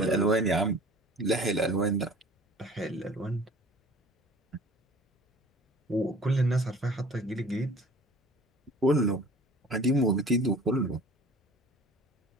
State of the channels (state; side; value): normal; both; correlation 0.47